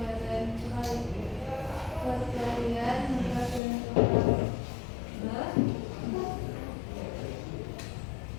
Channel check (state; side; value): drops out; right; at 3.6 s